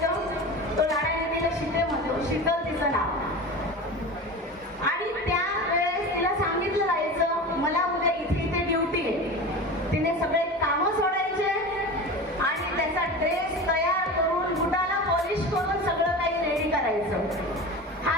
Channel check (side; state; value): both; normal; correlation 0.30